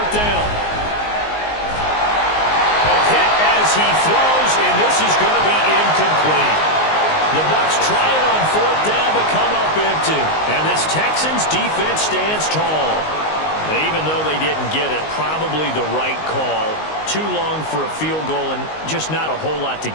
down. A hit as as he throws, and this is going to be incomplete. The Bucs try it on fourth down to come up empty. And this Texans defense stands tall. Even though they didn't get it, probably the right call. Too long for a field goal and just not a whole lot to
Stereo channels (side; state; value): right; late; 19 ms